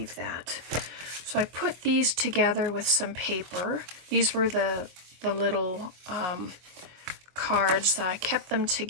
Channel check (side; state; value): left; late; 24 ms